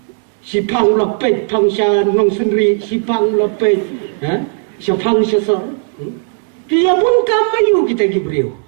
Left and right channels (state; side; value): silent; left; 64 dB below the other